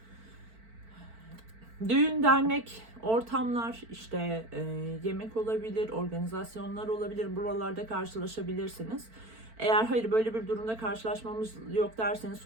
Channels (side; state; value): left; late; 4.5 ms